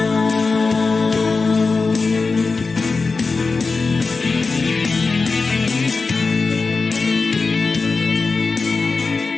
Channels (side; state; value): right; quieter; 4.2 dB